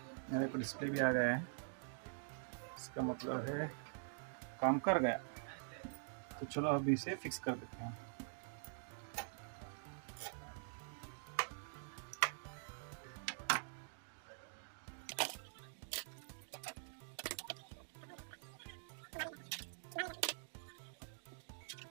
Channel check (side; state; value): left; silent; digital silence